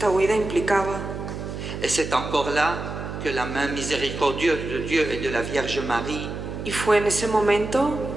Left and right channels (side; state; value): right; noise; hum, 7 dB below the sound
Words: huida implicaba. Et c'est encore là que la main miséricordieuse de Dieu et de la Vierge Marie Y fue en ese momento